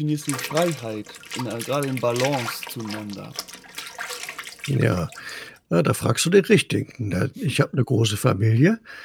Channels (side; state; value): both; identical; correlation 1.00